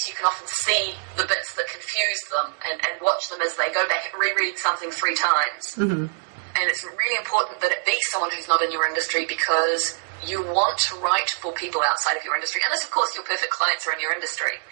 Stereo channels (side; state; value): left; silent; 62 dB below the other